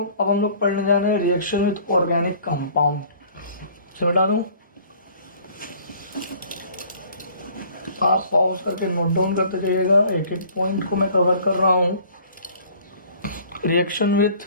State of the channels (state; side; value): inverted; both; correlation -0.53